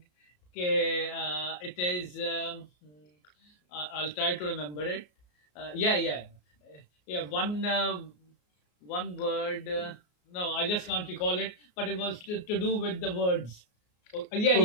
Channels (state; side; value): late; right; 33 ms